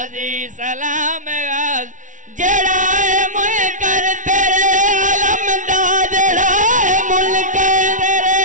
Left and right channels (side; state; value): left; late; 0.37 ms